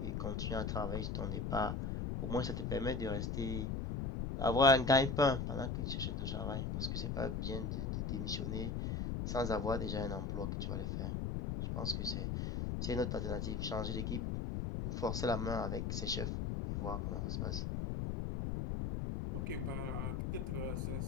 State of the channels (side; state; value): left; noise; rumble, 1 dB below the sound